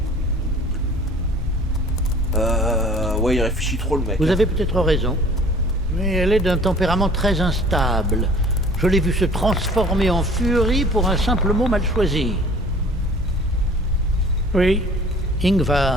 Ouais, il réfléchit trop le mec. Vous avez peut-être raison, mais elle est d'un tempérament très instable. Je l'ai vue se transformer en furie pour un simple mot mal choisi. Oui,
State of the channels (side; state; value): both; normal; correlation 0.49